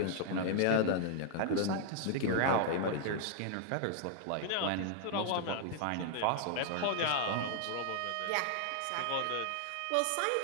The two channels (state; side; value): different; both; correlation 0.00